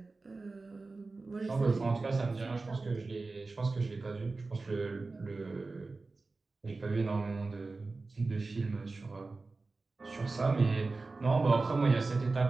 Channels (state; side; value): quieter; left; 3.6 dB